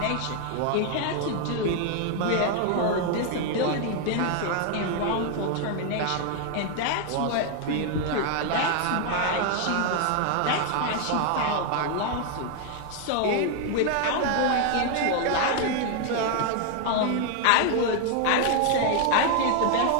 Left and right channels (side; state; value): both; different; correlation 0.00